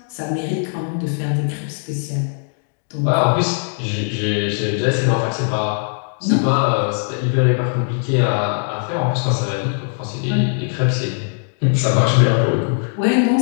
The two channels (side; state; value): right; silent; digital silence